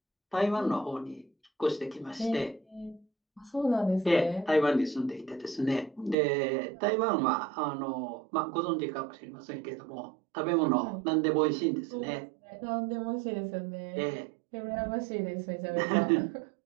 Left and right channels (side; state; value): left; drops out; at 6.2 s